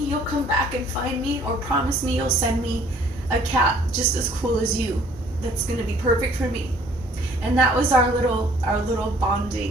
come back and find me, or promise me you'll send me a cat just as cool as you. That's gonna be perfect for me. And that was our little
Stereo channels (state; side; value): normal; both; correlation 0.57